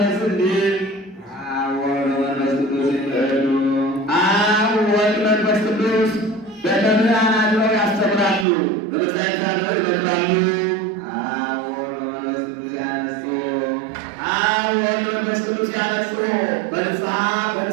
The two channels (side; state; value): left; drops out; at 8.5 s